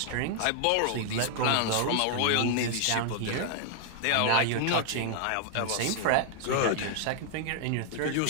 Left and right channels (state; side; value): different; both; correlation 0.00